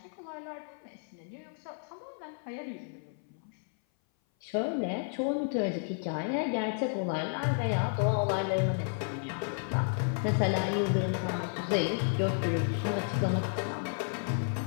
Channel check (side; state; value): right; silent; 56 dB below the other